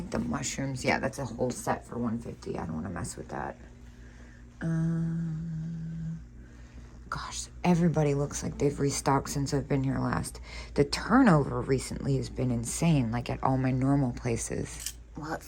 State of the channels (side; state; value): both; identical; correlation 1.00